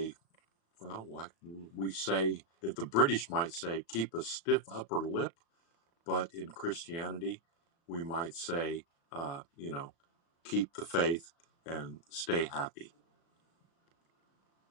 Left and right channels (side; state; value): right; late; 36 ms